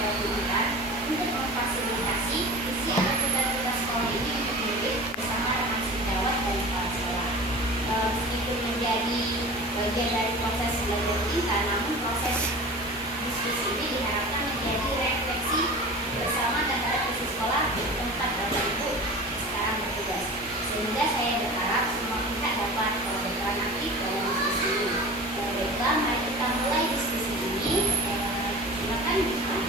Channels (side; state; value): both; normal; correlation 0.35